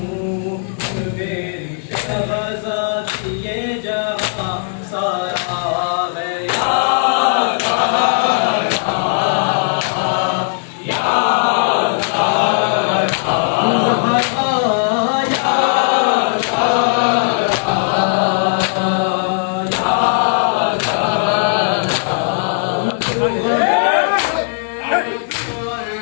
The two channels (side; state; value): right; silent; digital silence